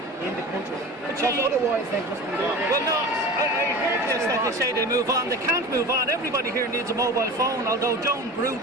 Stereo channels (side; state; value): both; normal; correlation 0.34